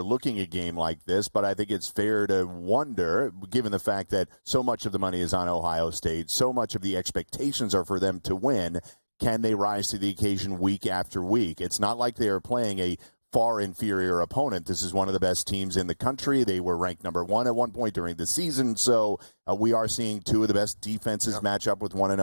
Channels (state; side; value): inverted; both; correlation -1.00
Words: a game like this, but I think it's fair to wonder, given the fact that so much of the money is on Ohio State, so much of the expectations are for them to win, can they rise to the occasion week after week? It's not like they are playing a far inferior opponent. This is one of the best teams in the country. They were ranked number one at one point during the season, so we are seeing two of the best defenses match up with one